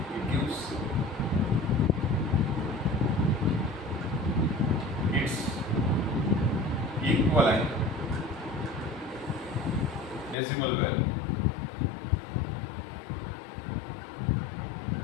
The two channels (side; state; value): right; drops out; at 10.4 s